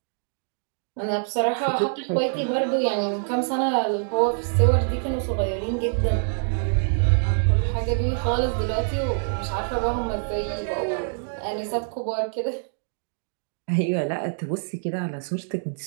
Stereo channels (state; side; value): silent; left; digital silence